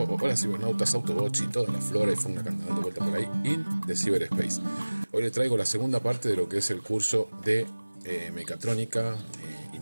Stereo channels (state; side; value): inverted; both; correlation -1.00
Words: hola cibernautas, Autobots y toda la flora y fauna que andan dando vuelta por ahí in the cyberspace. Hoy les traigo la segunda parte de lo que es el curso de mecatrónica